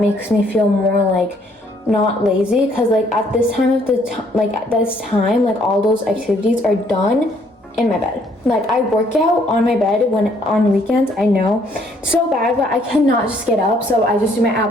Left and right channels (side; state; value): both; normal; correlation 0.65